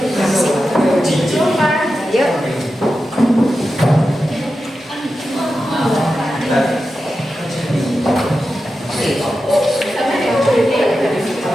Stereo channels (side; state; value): both; normal; correlation 0.91